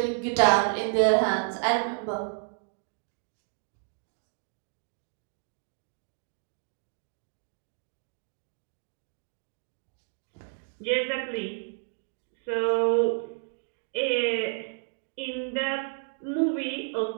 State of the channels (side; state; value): left; silent; 57 dB below the other